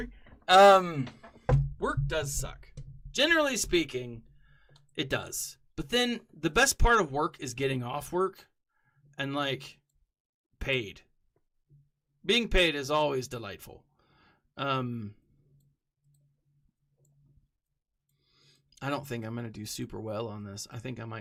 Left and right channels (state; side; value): identical; both; correlation 1.00